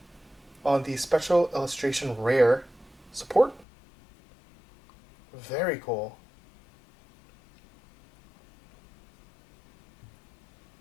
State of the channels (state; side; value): drops out; right; at 3.7 s